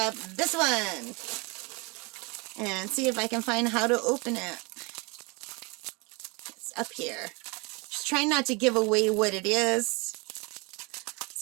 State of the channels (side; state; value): left; quieter; 28.9 dB